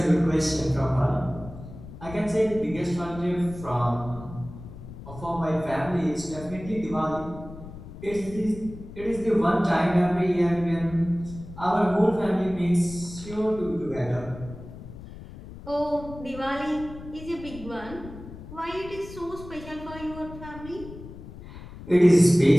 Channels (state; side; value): noise; left; rumble, 14 dB below the sound